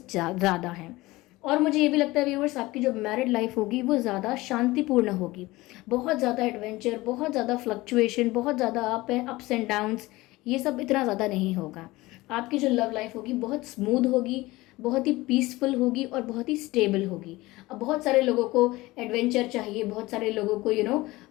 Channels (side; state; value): right; quieter; 19.9 dB